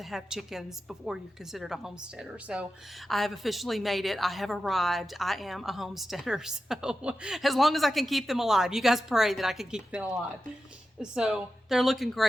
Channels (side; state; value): both; normal; correlation 0.92